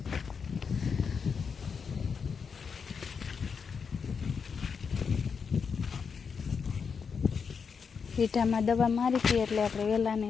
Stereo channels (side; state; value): right; quieter; 6.0 dB